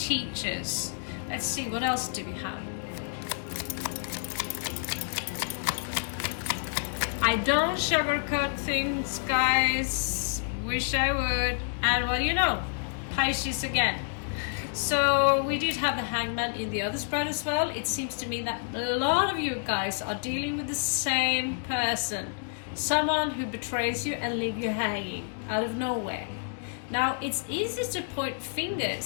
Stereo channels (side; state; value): right; silent; digital silence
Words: Let's see, what else do we have? I don't sugarcoat things, guys. Wish I would. And what do you know? Pisces again. So we did have the Hangman in the other spread as well. It seems to me that a lot of you guys are dealing with the same person. Someone who betrays you and leave you hanging out of nowhere. Now it's easy to point